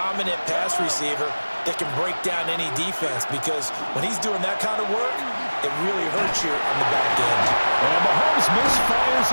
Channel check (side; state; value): both; inverted; correlation -1.00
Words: pass receiver that can break down any defense because when he's doing that kind of work, it really hurts you on the back end. And Mahomes misfires